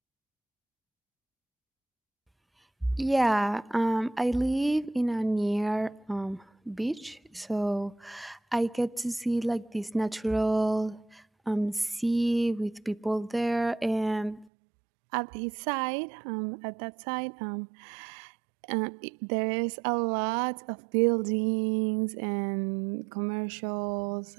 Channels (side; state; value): left; drops out; at 14.5 s